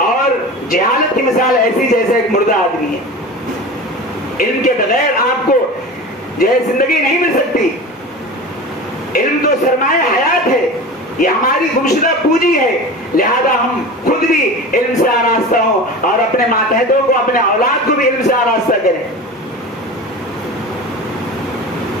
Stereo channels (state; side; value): normal; both; correlation 0.32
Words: اور جہالت کی مثال ایسی جیسے ایک مردہ آدمی ہے۔ علم کے بغیر آپ کو جو ہے زندگی نہیں مل سکتی۔ علم تو سرمایہ حیات ہے، یہ ہماری گمشدہ پونجی ہے، لہذا ہم خود بھی علم سے آراستہ ہوں اور اپنے ماتحتوں کو، اپنے اولاد کو بھی علم سے آراستہ کریں۔